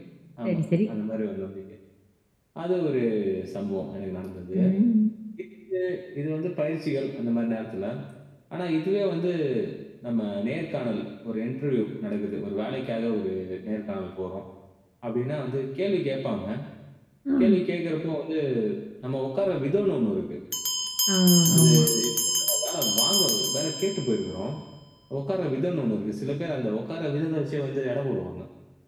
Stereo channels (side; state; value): both; identical; correlation 1.00